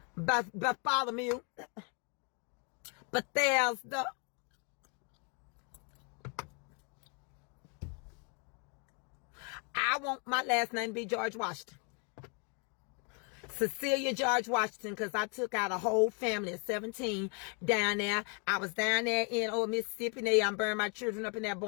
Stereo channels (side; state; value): right; quieter; 36.5 dB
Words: Bartholomew. Bethesda. I want my last name to be George Washington. Cecilia George Washington, because I took out a whole family of 17 down there. I was down there in old Mississippi, and I burned my children up in there